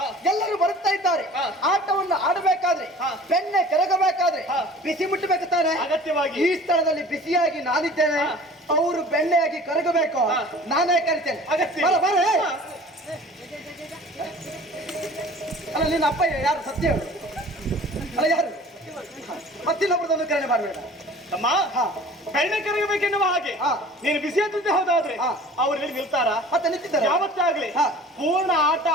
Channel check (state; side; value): normal; both; correlation 0.45